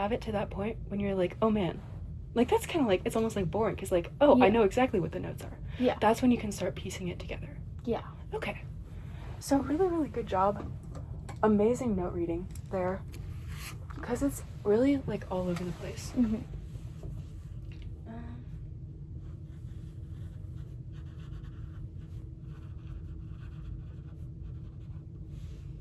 it to that point, when you're like, oh man, like that's kind of like, it's almost like boring because like, oh, I know exactly what the notes are. Yeah. That's when you can start piecing it together. Yeah. Okay. So really, really good job. Amazing note reading there. Because it's really like all over the place.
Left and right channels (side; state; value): both; identical; correlation 1.00